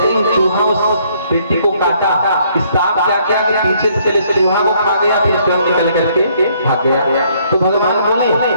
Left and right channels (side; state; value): both; inverted; correlation -0.66